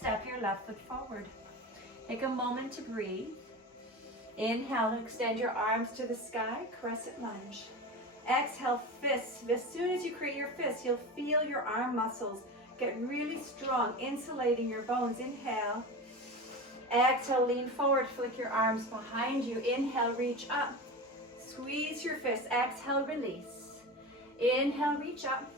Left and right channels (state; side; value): normal; both; correlation 0.28